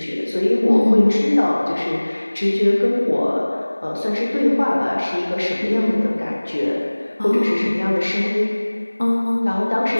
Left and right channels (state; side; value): inverted; both; correlation -1.00